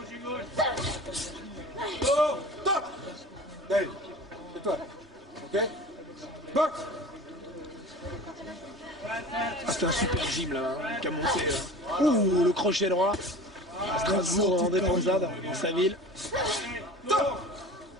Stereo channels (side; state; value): both; normal; correlation 0.38